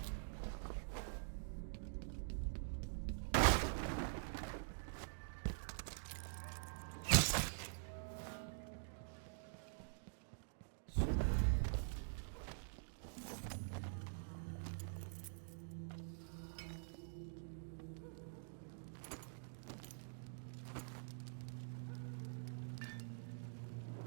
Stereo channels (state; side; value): silent; left; digital silence